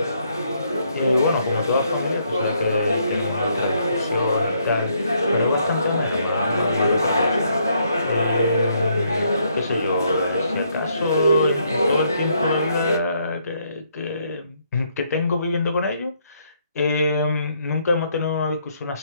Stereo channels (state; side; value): inverted; both; correlation -0.72